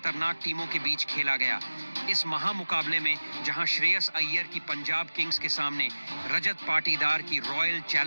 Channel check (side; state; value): both; inverted; correlation -1.00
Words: टीमों के बीच खेला गया। इस महामुकाबले में जहां श्रेयस अय्यर की पंजाब किंग्स के सामने रजत पाटीदार की रॉयल